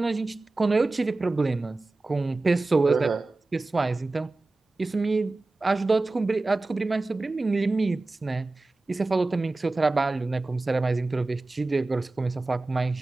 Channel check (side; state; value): left; quieter; 3.2 dB